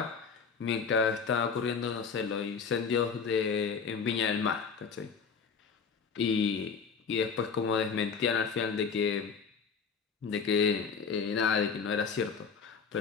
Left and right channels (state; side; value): quieter; right; 5.8 dB